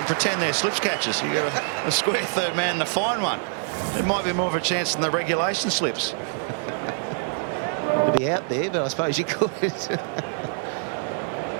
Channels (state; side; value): silent; left; 58 dB below the other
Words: Pretend they're slips catchers. You got a square third man and a fine one. It might be more of a chance than the regulation slips. To be out there, but I suppose you could.